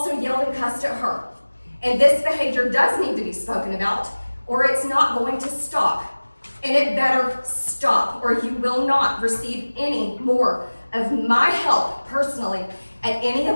yelled and cussed at her. And this behavior does need to be spoken about, or it's not going to stop. And it better stop, or you will not receive any more of my help personally at any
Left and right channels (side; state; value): both; inverted; correlation -1.00